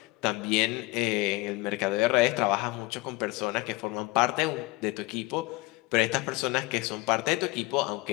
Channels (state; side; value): quieter; right; 21.9 dB